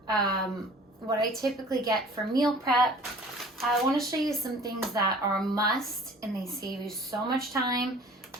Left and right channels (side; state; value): both; normal; correlation 0.47